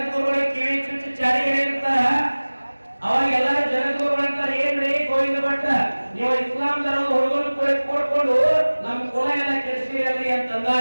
ಕಿವಿ ಚುಚ್ಚಿ ಚಾಡಿ ಇರ್ತಾರ. ಅವಾಗ ಎಲ್ಲರೂ ಜಗದ್ಗುರುಗಳು ಅಂತಾರೆ, ಏನ್ರಿ ಗೋವಿಂದ ಭಟ್ಟ, ನೀವು ಇಸ್ಲಾಂ ಧರ್ಮದ ಹುಡುಗರು ಕೊಡ್ಕೊಂಡು ನಮ್ ಕುಲ ಎಲ್ಲ ಕೆಡಿಸಿರಲಿ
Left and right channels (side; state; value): both; inverted; correlation -1.00